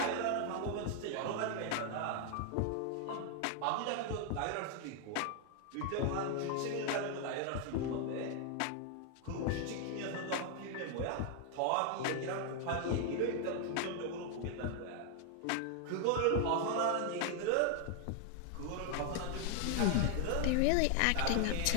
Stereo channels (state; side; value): different; both; correlation 0.00